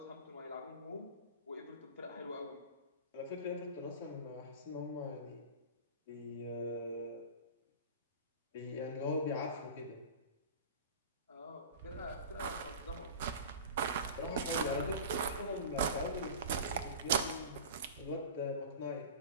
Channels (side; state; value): both; inverted; correlation -0.33